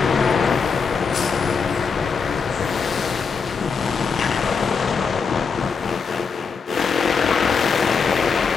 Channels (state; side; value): quieter; right; 5.5 dB